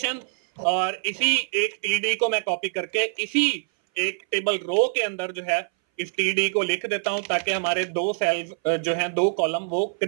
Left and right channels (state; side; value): silent; left; 60 dB below the other